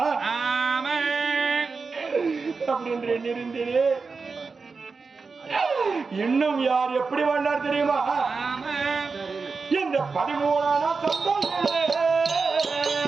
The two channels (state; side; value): quieter; left; 4.6 dB